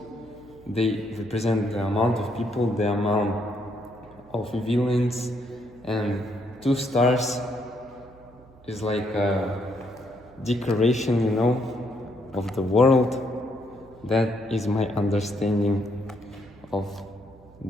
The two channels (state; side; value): noise; right; hum, 24 dB below the sound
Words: they represent the amount of people, the amount of villains, and 2 stars is like a decoration, you know, of the world. That is my understanding of